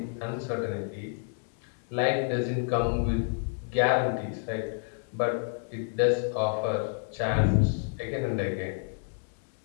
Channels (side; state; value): right; silent; 57 dB below the other